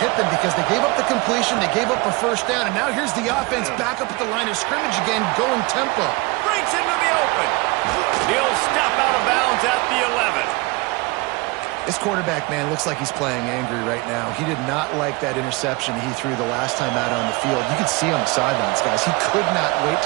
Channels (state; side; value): quieter; left; 25.1 dB